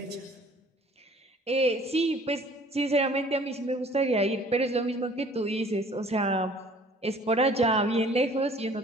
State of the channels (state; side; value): normal; both; correlation 0.53